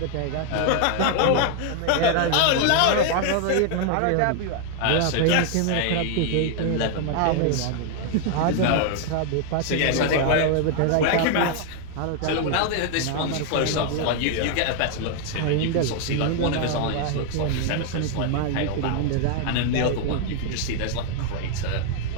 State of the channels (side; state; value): both; different; correlation 0.00